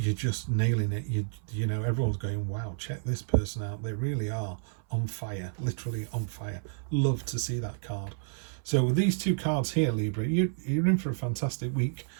just nailing it. Everyone's going, wow, check this person out. They really are on fire, literally on fire. Love to see that card. So with these 2 cards here, Libra, you're in for a fantastic week.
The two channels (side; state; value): left; silent; 56 dB below the other